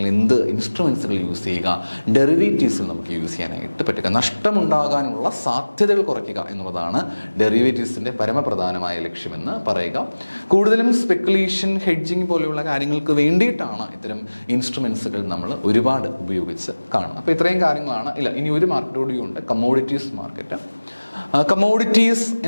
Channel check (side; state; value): both; inverted; correlation -1.00